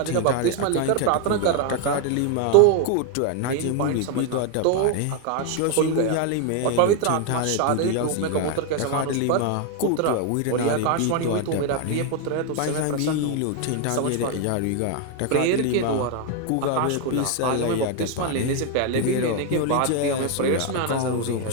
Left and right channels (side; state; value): both; different; correlation 0.01